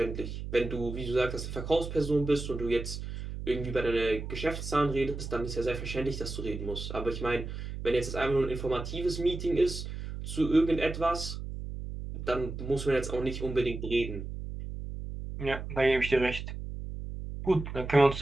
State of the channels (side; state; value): right; noise; hum, 7 dB below the sound